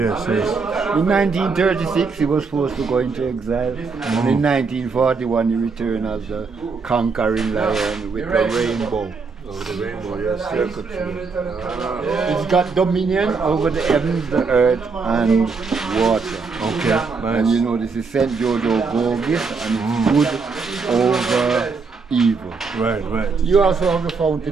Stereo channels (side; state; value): left; quieter; 4.7 dB